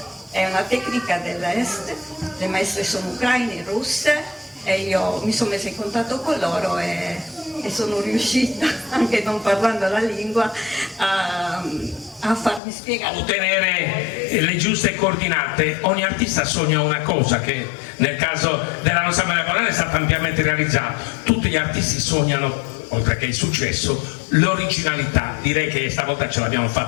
è una tecnica dell'est, le maestre sono ucraine, russe, e io mi sono messa in contatto con loro e sono riuscita, anche non parlando la lingua, a farmi spiegare. Ottenere le giuste coordinate. Ogni artista sogna una cosa che nel caso della nostra Maria Colonna è stata ampiamente realizzata. Tutti gli artisti sognano, oltre che il successo, l'originalità. Direi che stavolta ce l'abbiamo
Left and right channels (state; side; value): drops out; right; at 12.6 s